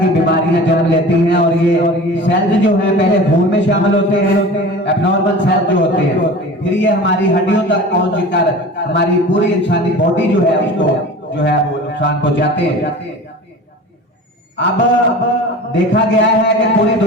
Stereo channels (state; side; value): normal; both; correlation 0.37